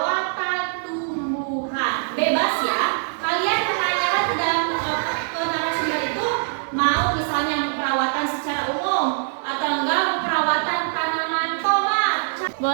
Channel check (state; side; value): silent; left; digital silence